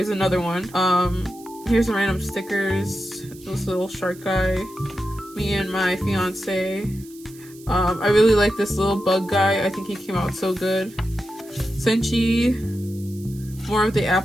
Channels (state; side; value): noise; right; hiss, 22 dB below the sound